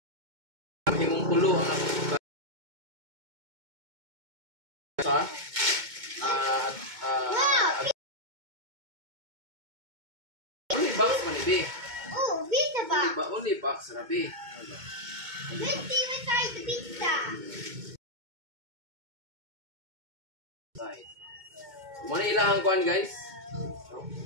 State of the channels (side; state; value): left; late; 2.2 ms